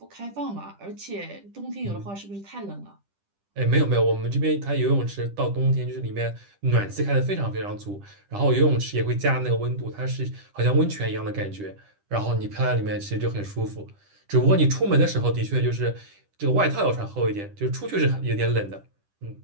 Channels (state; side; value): late; left; 10 ms